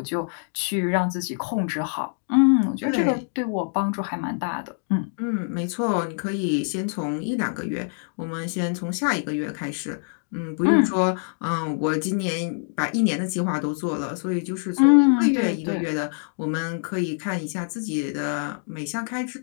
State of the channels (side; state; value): right; silent; digital silence